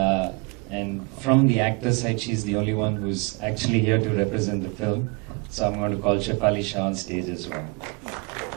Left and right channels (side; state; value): left; quieter; 30.5 dB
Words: And from the actor side, she's the only one who's actually here to represent the film. So I'm going to call Shefali Shah on stage as well.